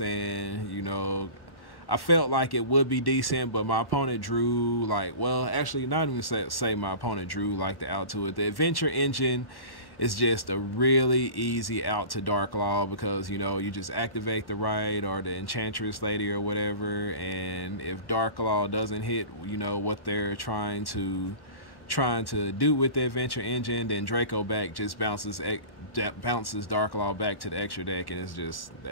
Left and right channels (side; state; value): right; late; 1.1 ms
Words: And, you know, I felt like it would be decent, but my opponent drew like, well, actually not even say my opponent drew like the out to it. The Adventure Engine is just a really easy out to Dark Law because, you know, you just activate the right or the Enchantress Lady or whatever. And if Dark Law doesn't hit, you know, what they're trying to do with the Adventure Engine, then Draco back just bounces Dark Law back to the extra deck, and